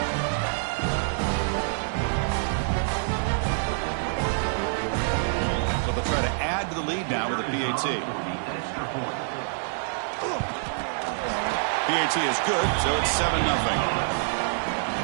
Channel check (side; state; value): left; silent; 61 dB below the other